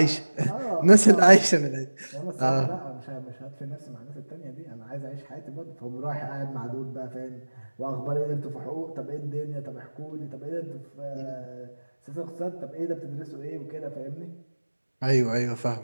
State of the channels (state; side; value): inverted; both; correlation -1.00